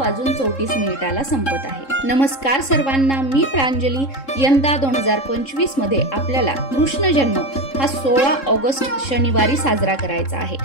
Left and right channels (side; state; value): right; late; 3.7 ms